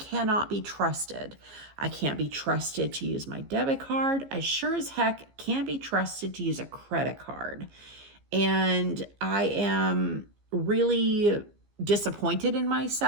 cannot be trusted. I can't be trusted to use my debit card. I sure as heck can't be trusted to use a credit card. And I am really disappointed in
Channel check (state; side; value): late; left; 15 ms